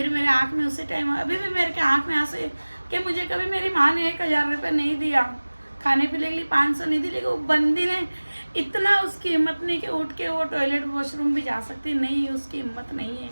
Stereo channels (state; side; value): inverted; both; correlation -1.00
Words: मेरे आँख में उसी टाइम, अभी भी मेरे के आँख में आंसू कि मुझे कभी मेरी माँ ने 1000 रुपये नहीं दिया, खाने पीने के लिए 500 नहीं दी, लेकिन वो बंदी ने इतना, उसकी हिम्मत नहीं कि उठ के वो टॉयलेट वॉशरूम भी जा सकती, नहीं उसकी हिम्मत नहीं है।